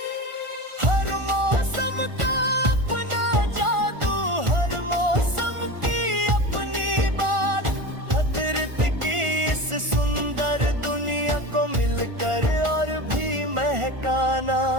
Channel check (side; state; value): left; late; 1.4 ms